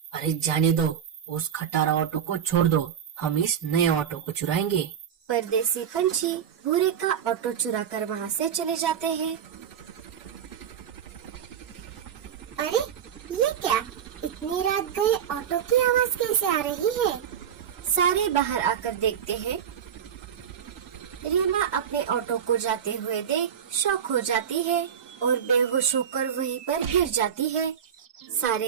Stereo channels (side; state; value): left; quieter; 8.5 dB